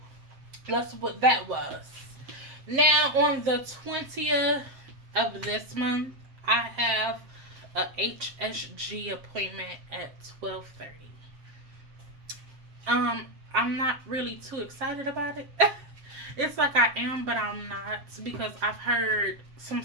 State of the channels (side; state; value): left; late; 7.5 ms